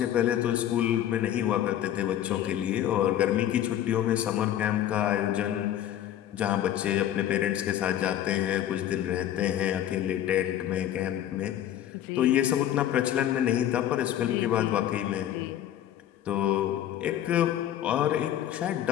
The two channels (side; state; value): right; quieter; 11.5 dB